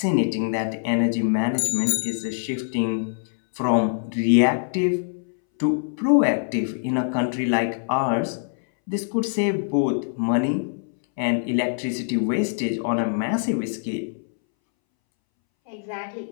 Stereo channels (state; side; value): silent; right; 63 dB below the other